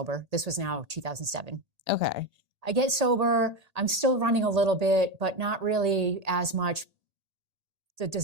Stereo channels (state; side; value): late; left; 1.8 ms